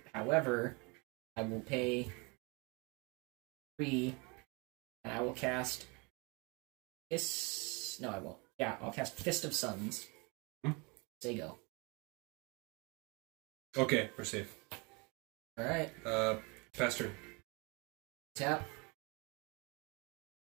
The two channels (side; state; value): left; quieter; 29.2 dB